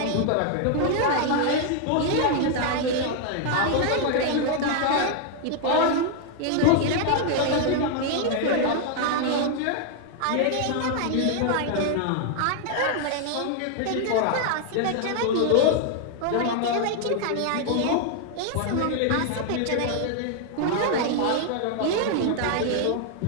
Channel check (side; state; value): both; different; correlation 0.00